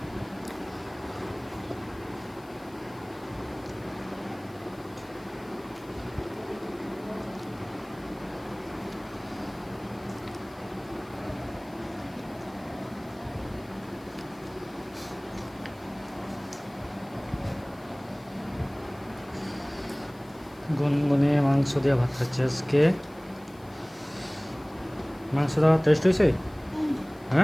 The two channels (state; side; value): noise; left; hiss, 27 dB below the sound